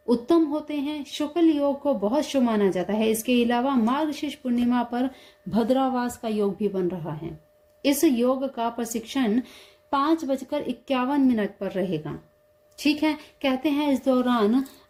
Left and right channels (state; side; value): identical; both; correlation 1.00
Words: उत्तम होते हैं। शुक्ल योग को बहुत शुभ माना जाता है। इसके अलावा मार्गशीर्ष पूर्णिमा पर भद्रावास का योग भी बन रहा है। इस योग का प्रशिक्षण 5:51 पर रहेगा। ठीक है, कहते हैं इस दौरान